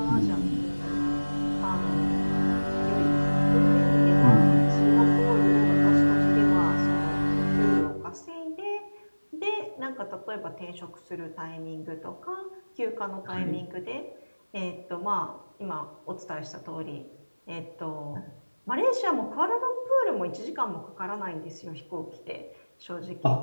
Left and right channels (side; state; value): both; inverted; correlation -1.00